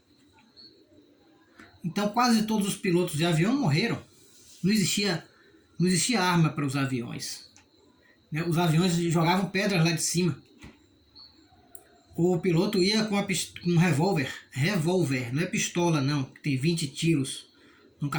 Então quase todos os pilotos de avião morreram. Não existia arma para os aviões, né? Os aviões jogavam pedras lá de cima. O piloto ia com um revólver, não é pistola não, que tem 20 tiros num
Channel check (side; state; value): both; identical; correlation 1.00